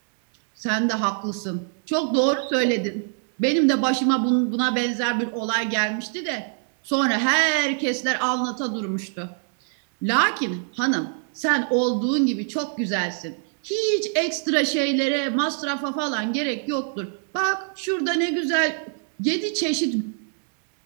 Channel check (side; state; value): left; silent; 58 dB below the other